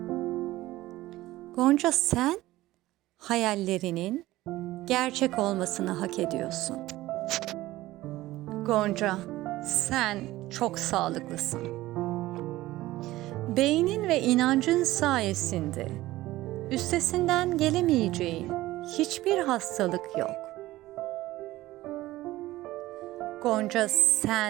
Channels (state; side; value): quieter; left; 16.9 dB